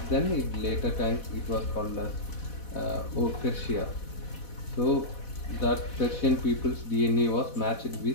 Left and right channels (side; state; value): right; late; 4.1 ms